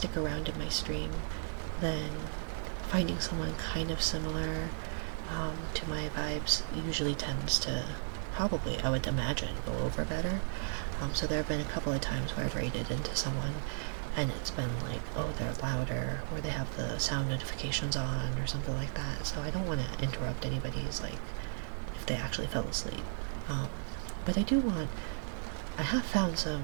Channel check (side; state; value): left; silent; digital silence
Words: around in my stream, then finding someone kind of similar to my vibes usually tends to probably, I would imagine, go over better. So there have been a couple of times where I've raided into someone and it's been like, oh, they're louder, or they have the sound notifications on, or something like that. So I don't want to interrupt anybody's, like, if they actually fell asleep. But I have found some